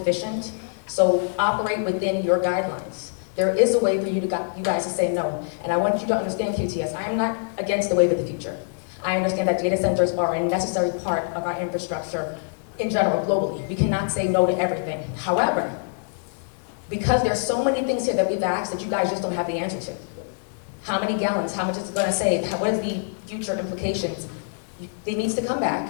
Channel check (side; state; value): right; silent; digital silence